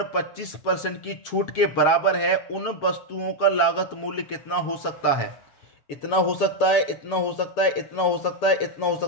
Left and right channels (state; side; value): late; right; 7.3 ms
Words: 25% की छूट के बराबर है। उन वस्तुओं का लागत मूल्य कितना हो सकता है? इतना हो सकता है, इतना हो सकता है, इतना हो सकता है, इतना हो